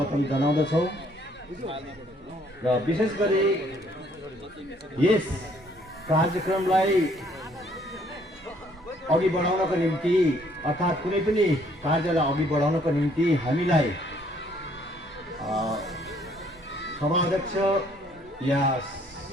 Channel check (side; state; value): both; normal; correlation 0.64